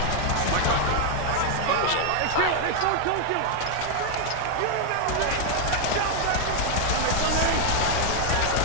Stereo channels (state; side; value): different; both; correlation 0.01